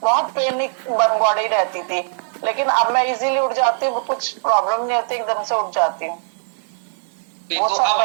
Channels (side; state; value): left; silent; digital silence